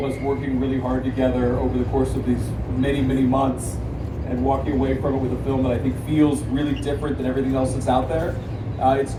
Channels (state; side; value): identical; both; correlation 1.00